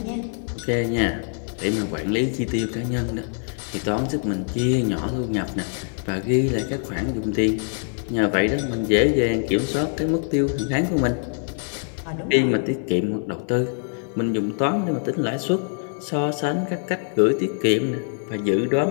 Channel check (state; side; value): silent; right; 56 dB below the other